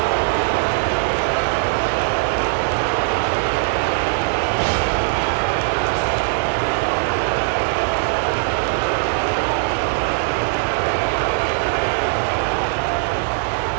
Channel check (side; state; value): left; silent; digital silence